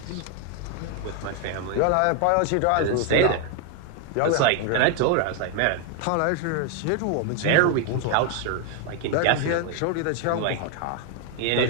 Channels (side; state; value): both; different; correlation 0.00